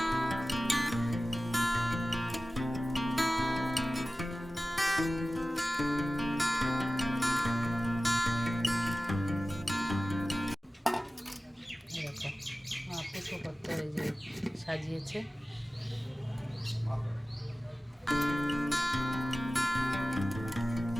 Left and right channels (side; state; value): both; normal; correlation 0.96